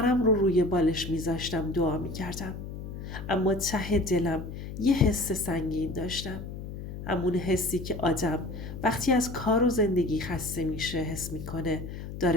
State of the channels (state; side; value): noise; left; hum, 9 dB below the sound